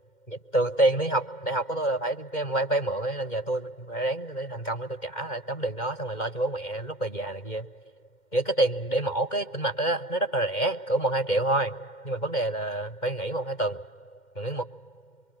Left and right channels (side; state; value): right; late; 2.1 ms